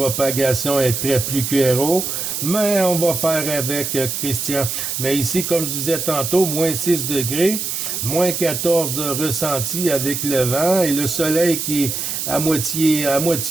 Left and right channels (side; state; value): right; noise; hiss, 3 dB below the sound